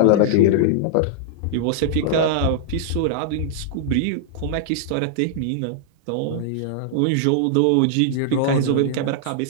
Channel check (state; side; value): different; both; correlation -0.01